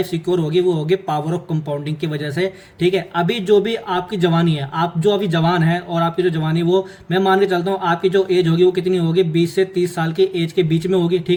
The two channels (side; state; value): both; identical; correlation 1.00